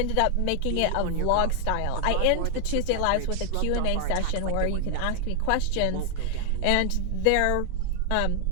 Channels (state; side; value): different; both; correlation 0.00